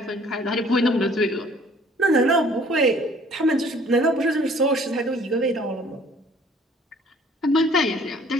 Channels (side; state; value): both; normal; correlation 0.56